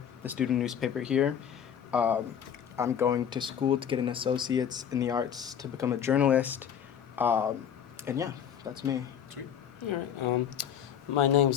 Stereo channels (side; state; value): right; quieter; 8.6 dB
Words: the student newspaper here. I'm going to school to get an associate's in the arts to become a journalist. And yeah, that's me. Sweet. All right. My